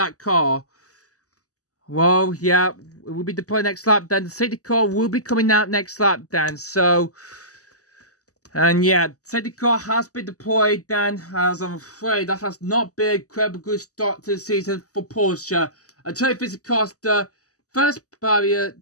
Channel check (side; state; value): right; late; 0.66 ms